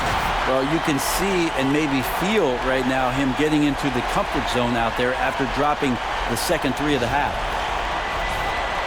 Well, you can see and maybe feel right now him getting into the comfort zone out there after dropping the second 3 of the half.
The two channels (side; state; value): both; identical; correlation 1.00